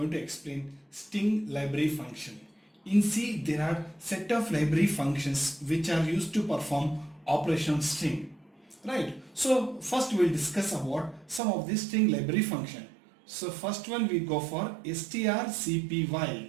to explain string library function. In C there are set of library functions which are used to perform operation on string. Right. So first we will discuss about some of these string library function. So first one we go for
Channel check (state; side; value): drops out; left; at 11.4 s